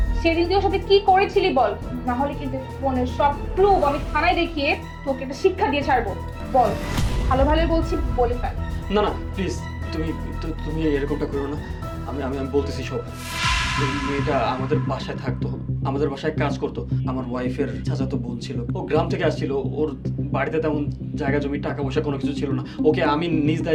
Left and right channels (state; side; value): identical; both; correlation 1.00